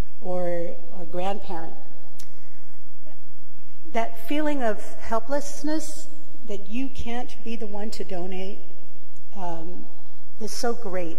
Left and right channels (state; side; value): identical; both; correlation 1.00